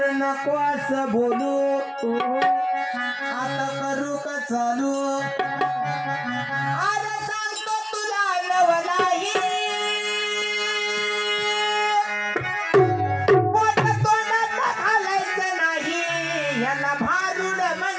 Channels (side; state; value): both; identical; correlation 1.00